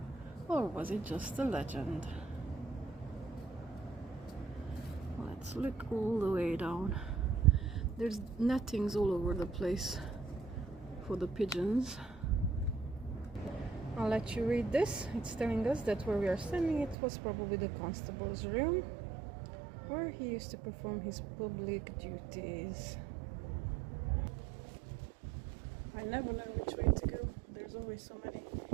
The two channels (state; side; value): drops out; left; at 16.9 s